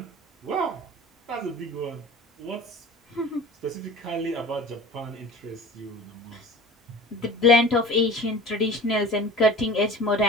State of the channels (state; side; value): normal; both; correlation 0.39